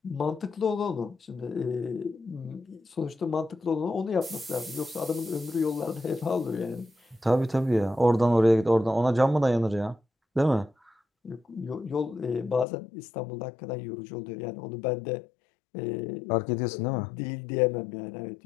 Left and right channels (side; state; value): right; drops out; at 12.7 s